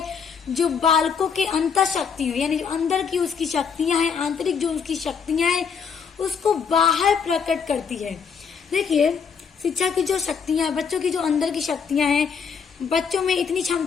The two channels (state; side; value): quieter; right; 6.3 dB